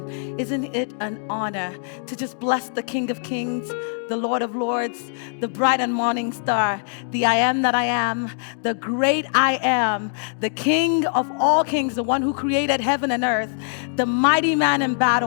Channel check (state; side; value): silent; right; digital silence